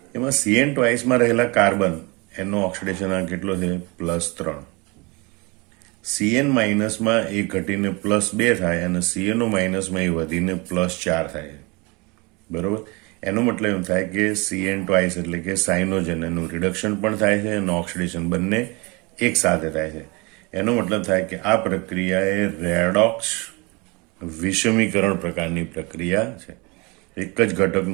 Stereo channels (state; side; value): quieter; left; 27.3 dB